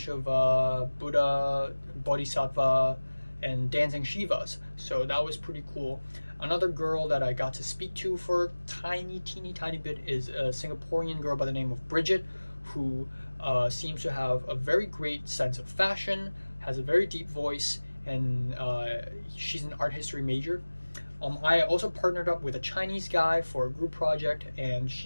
of Buddha, Bodhisattva, and dancing Shivas. So that was pretty cool. Another girl that I got to speak to for a teeny tiny bit is a Singaporean girl by the name of Bridget, who seems to have a very great sense of fashion, has a very deep voice, and she's an art history major. I also partnered up with a Chinese guy for a group project, and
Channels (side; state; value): both; inverted; correlation -1.00